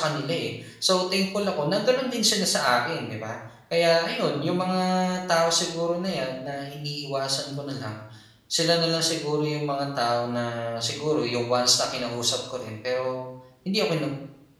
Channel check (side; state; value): both; identical; correlation 1.00